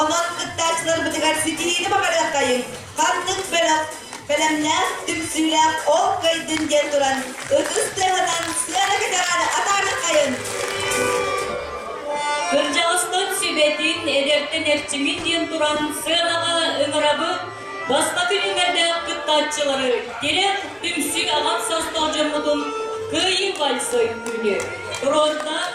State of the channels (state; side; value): identical; both; correlation 1.00